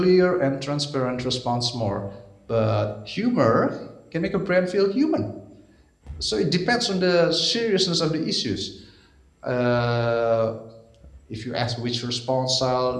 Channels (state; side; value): identical; both; correlation 1.00